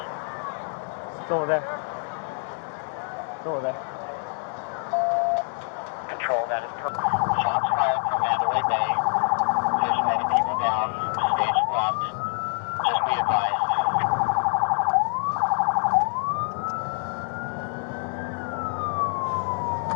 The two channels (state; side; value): silent; right; 61 dB below the other